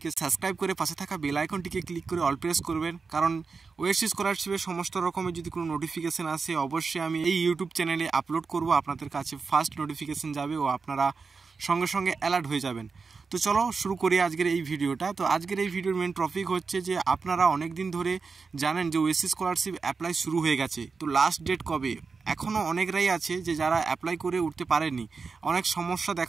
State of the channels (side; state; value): left; quieter; 4.8 dB